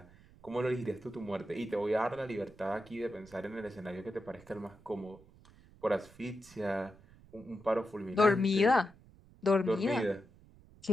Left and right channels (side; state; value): right; noise; rumble, 24 dB below the sound